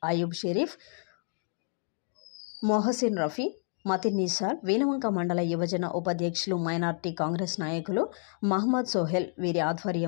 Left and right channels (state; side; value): silent; right; 58 dB below the other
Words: అయూబ్ షరీఫ్, మొహసిన్ రఫీ, మతిన్ నిసార్, వీణవంక మండల యువజన ఉపాధ్యక్షులు, మైనార్టీ కాంగ్రెస్ నాయకులు మహమ్మద్ సోహెల్ వీరి